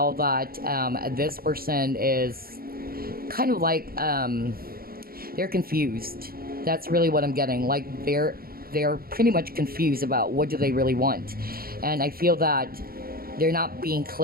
that this person is kind of like they're confused. That's really what I'm getting. Like they're pretty much confused about what do they really want. And I feel that they're not being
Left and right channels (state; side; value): late; left; 0.43 ms